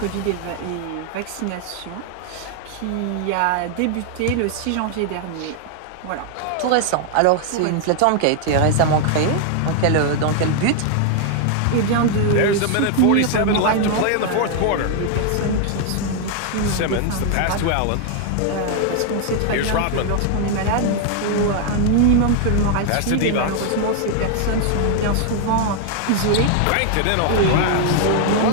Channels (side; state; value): both; different; correlation 0.00